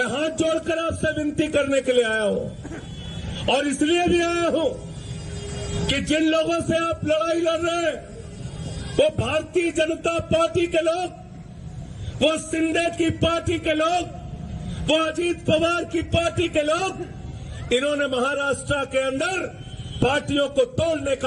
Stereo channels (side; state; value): both; identical; correlation 1.00